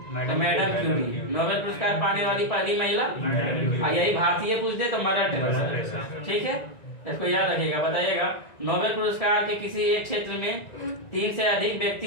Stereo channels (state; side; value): late; right; 1.9 ms